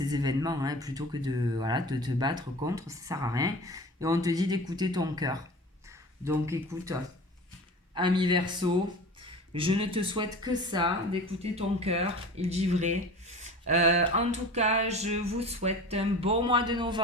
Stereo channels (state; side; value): normal; both; correlation 0.37